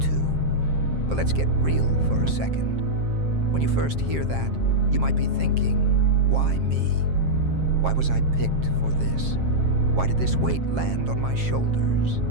too. But let's get real for a second. When you first hear that, you might be thinking, why me? Why was I picked for this? Why did this weight land on my shoulders?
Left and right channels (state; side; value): late; left; 7.5 ms